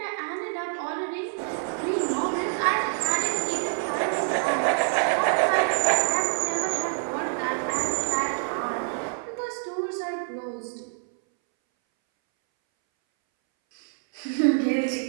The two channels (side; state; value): left; silent; 61 dB below the other